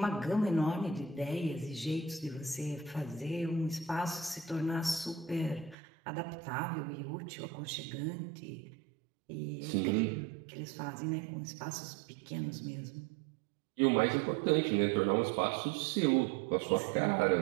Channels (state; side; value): drops out; left; at 5.8 s